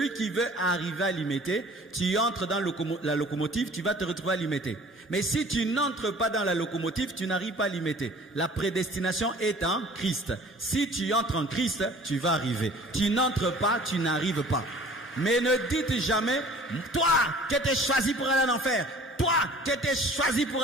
qui veut arriver à Limete, tu entres dans la locomotive, tu vas te retrouver à Limete. Mais si tu n'entres pas dans la locomotive, tu n'arrives pas à Limete. La prédestination est en Christ. Si tu entres en Christ, tu vas arriver. Tu n'entres pas, tu n'arrives pas. Mais ne dites jamais, toi qui étais choisi pour aller en enfer, toi qui étais choisi pour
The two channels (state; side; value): normal; both; correlation 0.48